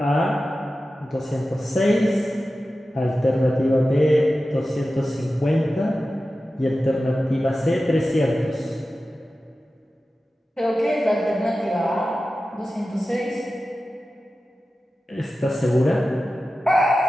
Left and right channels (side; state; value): both; normal; correlation 0.94